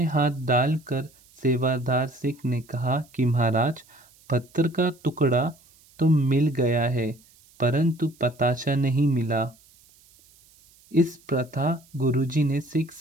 हाथ डालकर सेवादार सिख ने कहा कि महाराज, पत्थर का टुकड़ा तो मिल गया है परंतु पताशा नहीं मिला। इस प्रथा गुरुजी ने सिख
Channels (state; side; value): noise; right; hiss, 29 dB below the sound